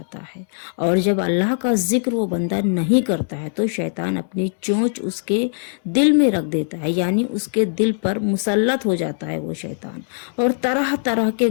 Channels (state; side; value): silent; right; digital silence